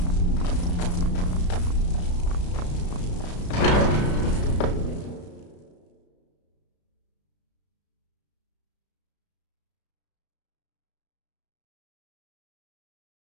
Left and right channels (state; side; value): late; right; 34 ms